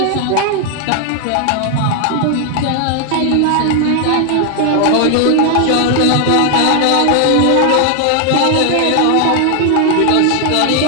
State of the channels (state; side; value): different; both; correlation 0.00